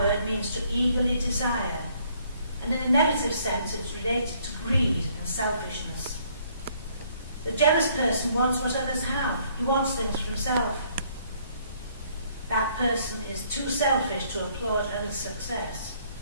means to eagerly desire, and in a negative sense it's related to greed and selfishness. The jealous person wants what others have. He wants things for himself. That person is too selfish to applaud others' success,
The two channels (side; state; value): both; inverted; correlation -0.64